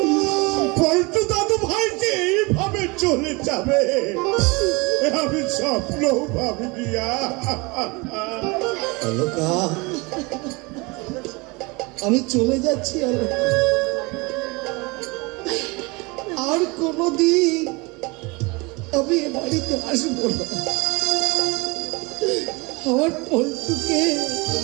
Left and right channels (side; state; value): left; quieter; 26.4 dB